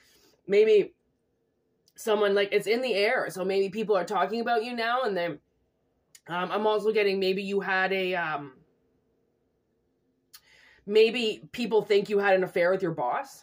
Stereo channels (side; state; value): both; identical; correlation 1.00